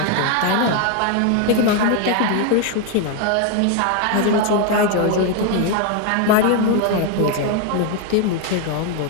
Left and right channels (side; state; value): both; different; correlation 0.01